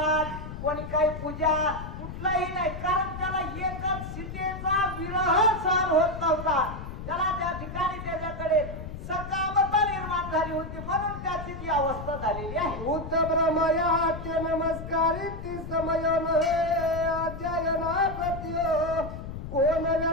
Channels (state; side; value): noise; left; rumble, 9 dB below the sound